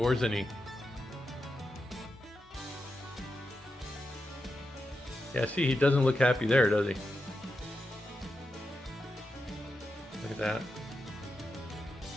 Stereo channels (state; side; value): normal; both; correlation 0.88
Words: Yeah, see, he doesn't look happy there, does he? Look at that.